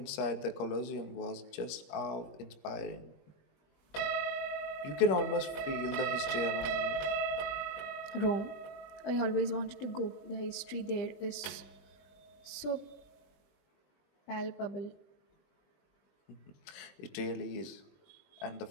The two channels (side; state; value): right; late; 20 ms